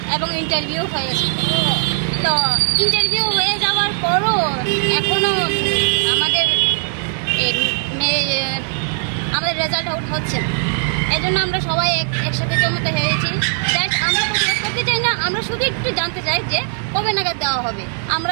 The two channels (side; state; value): left; silent; digital silence